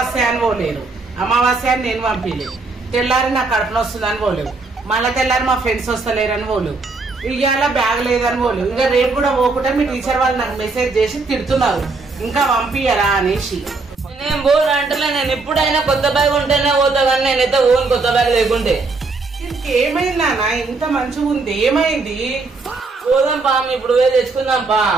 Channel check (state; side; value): quieter; left; 3.8 dB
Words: అని పోలేరు, అమావాస్య అని నేను పంపించలేదు. తెల్లారి నాకు కడుపున వస్తుందని పోలేవు, మళ్ళీ తెల్లారి మా ఫ్రెండ్స్ వస్తలేరని పోలేవు, ఇవాళ బ్యాగ్ లేదని పోలేవు. ఇంకా రేపు కూడా పోకుండా మీ టీచర్ వాళ్ళు నాకు మెసేజ్ చేసి తిడుతున్నారు ఇంకా పంపియరా అనేసి. నేను బోర్ అంటలే, నేను ఎప్పుడైనా కొత్త బ్యాగ్ ఉంటేనే పోతా, కానీ నేనైతే ఓన్ కొత్త బ్యాగ్ లేకుంటే. ఏమైంది నాన్న? ఇంత మంచిగా ఉంది, ఏమైంది? పోదాం పా, ఇప్పుడు పోయి తెచ్చుకుందాం పా.